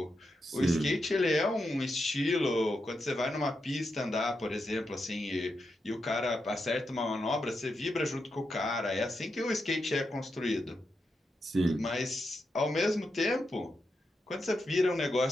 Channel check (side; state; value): both; normal; correlation 0.85